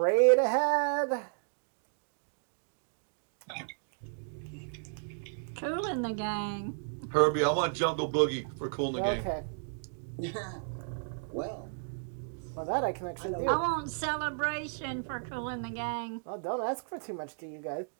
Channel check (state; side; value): silent; left; digital silence